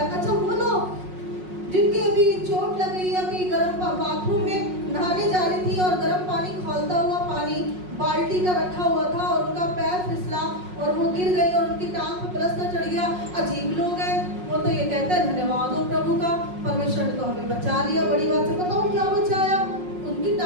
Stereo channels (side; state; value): left; late; 5.5 ms